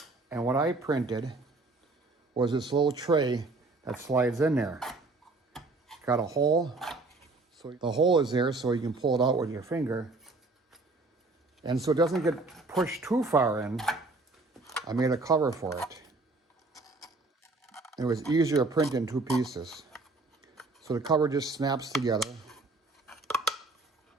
And what I printed was this little tray that slides in there. Got a hole. So the hole is there so you can pull it out with your finger. And so it doesn't get pushed too far in, I made a cover for it. It was easier to print in two pieces. So the cover just snaps together.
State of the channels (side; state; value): left; quieter; 3.4 dB